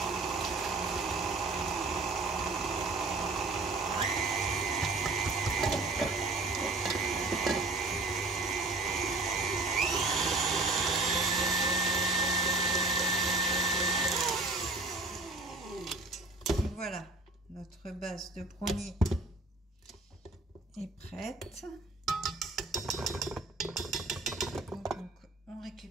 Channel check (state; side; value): quieter; left; 3.2 dB